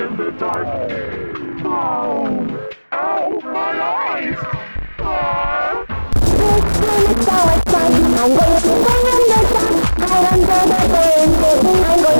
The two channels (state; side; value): inverted; both; correlation -1.00